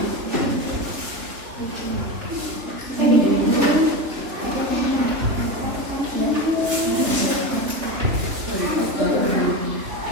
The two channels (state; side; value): late; left; 3.5 ms